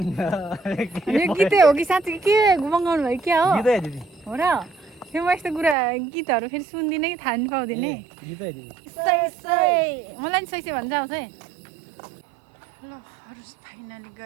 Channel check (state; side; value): drops out; left; at 5.8 s